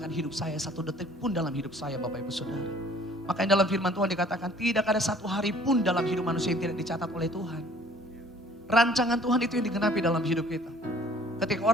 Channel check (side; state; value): both; normal; correlation 0.54